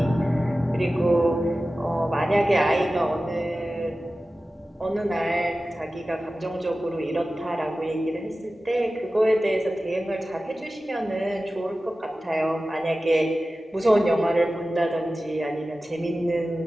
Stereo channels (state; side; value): normal; both; correlation 0.95